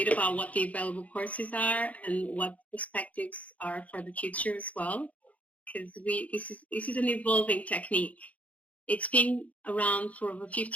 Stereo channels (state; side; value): late; right; 0.070 ms